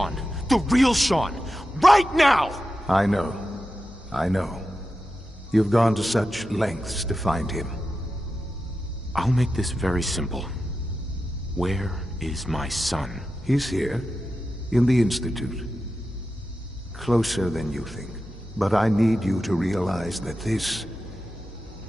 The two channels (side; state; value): both; normal; correlation 0.91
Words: The real Shaun. Right now! I know. You've gone to such lengths to find him. I'll make this very simple. Where is my son? He's here, in the Institute. Closer than you think. But I need you to realize that this